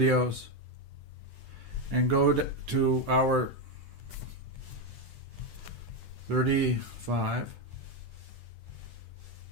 and go to our 35.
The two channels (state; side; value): late; left; 10 ms